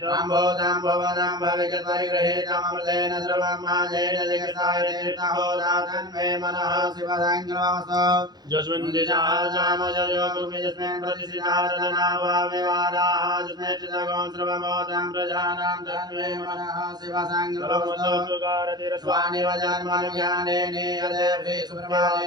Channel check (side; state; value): left; late; 0.20 ms